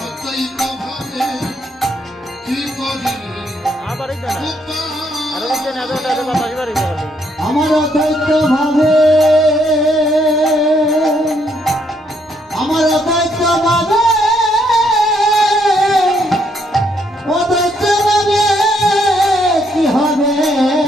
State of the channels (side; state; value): both; normal; correlation 0.72